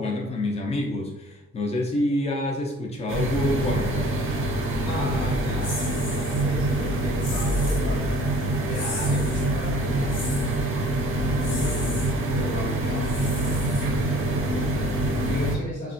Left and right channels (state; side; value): normal; both; correlation 0.51